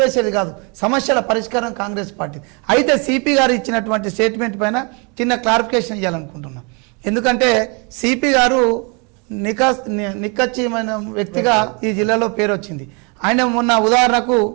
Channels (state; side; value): quieter; left; 33.1 dB